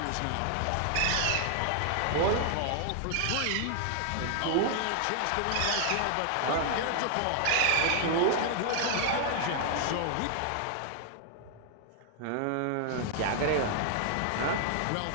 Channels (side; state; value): both; different; correlation 0.00